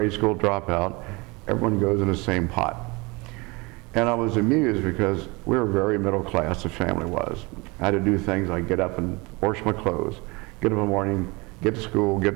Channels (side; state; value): left; quieter; 26.0 dB